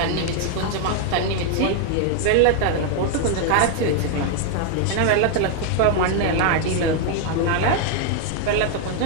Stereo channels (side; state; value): both; different; correlation 0.00